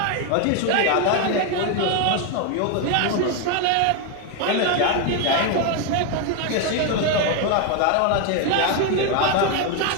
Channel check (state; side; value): different; both; correlation 0.01